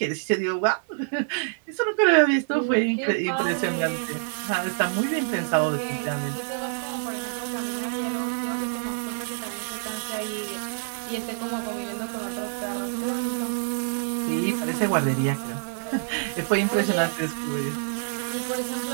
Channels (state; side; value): silent; left; digital silence